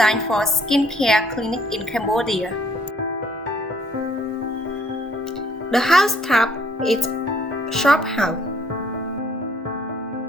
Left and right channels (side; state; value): both; normal; correlation 0.63